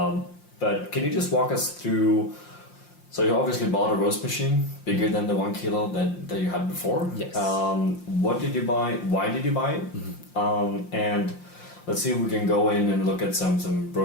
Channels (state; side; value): late; right; 5.7 ms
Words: But can you just walk us through? So you obviously bought a roast machine bigger than the 1 kilo that you had before. Yes. What did you buy? Why did you buy it? And let's see if we can go in and look at some